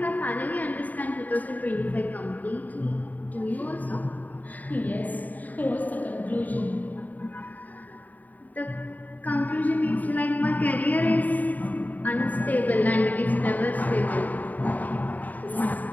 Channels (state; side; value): late; right; 0.080 ms